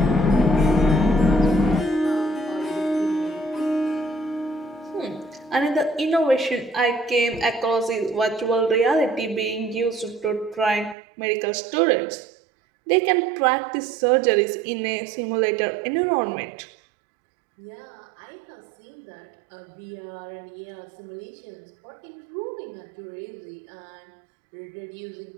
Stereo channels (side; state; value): left; drops out; at 11.0 s